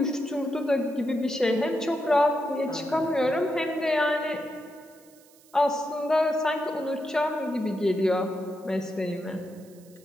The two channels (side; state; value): right; noise; hiss, 27 dB below the sound